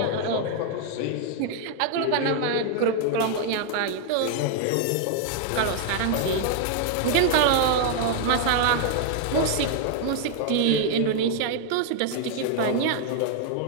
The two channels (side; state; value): both; different; correlation 0.00